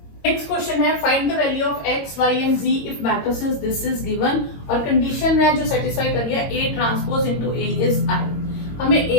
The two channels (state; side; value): late; right; 22 ms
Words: नेक्स्ट क्वेश्चन है find the value of X Y and Z if matrices this is given, और कंडीशन है जो सेटिस्फाई कर लिया, A transpose into A is I. हमें